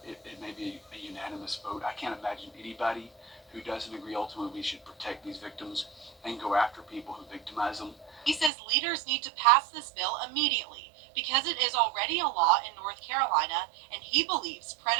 it may be a unanimous vote. I can't imagine anybody who doesn't agree ultimately we should protect these victims and go after people who victimize them. He says leaders need to pass this bill immediately because it is already a law in North Carolina, and he believes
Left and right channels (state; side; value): drops out; left; at 8.5 s